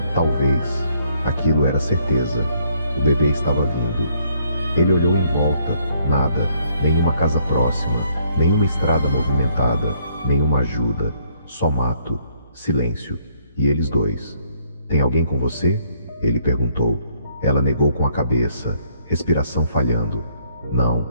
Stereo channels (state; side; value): inverted; both; correlation -0.66